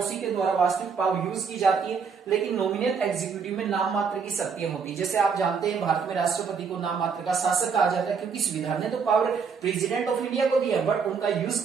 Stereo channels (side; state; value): left; quieter; 5.9 dB